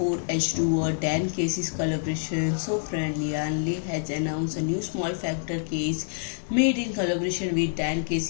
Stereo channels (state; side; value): silent; right; 60 dB below the other